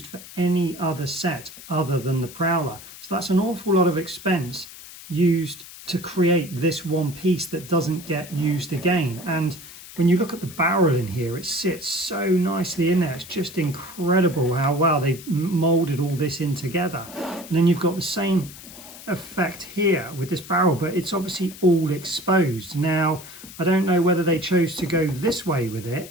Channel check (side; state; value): left; noise; hiss, 16 dB below the sound